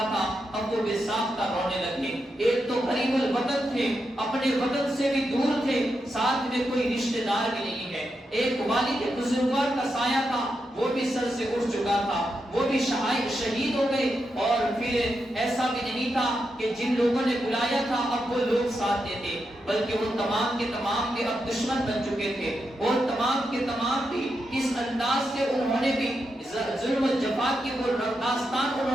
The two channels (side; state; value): both; normal; correlation 0.85